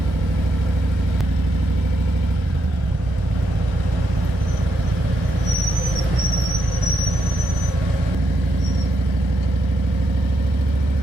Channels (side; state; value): both; normal; correlation 0.80